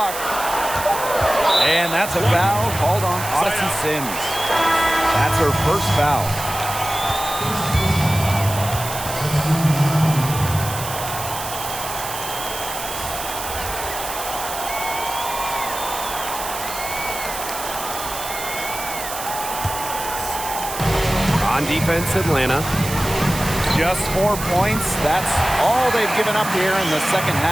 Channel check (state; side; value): noise; right; hiss, 8 dB below the sound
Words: And that's a foul called on Odyssey Sims. That's her first foul. On defense, Atlanta. Just 4 points. That's all they've given up here in the second